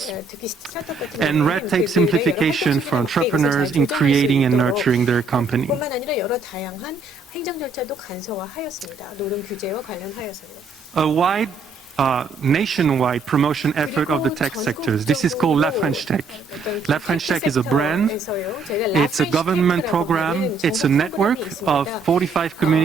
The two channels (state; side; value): quieter; left; 3.9 dB